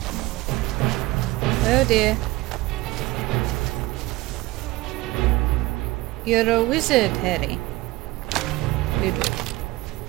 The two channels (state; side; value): quieter; left; 19.4 dB